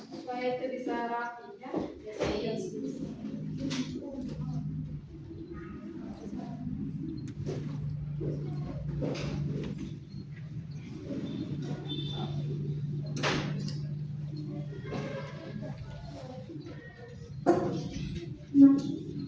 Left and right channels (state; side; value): identical; both; correlation 1.00